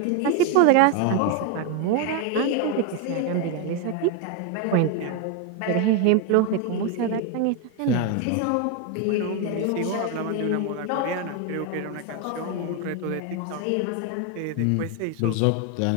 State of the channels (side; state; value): both; different; correlation 0.01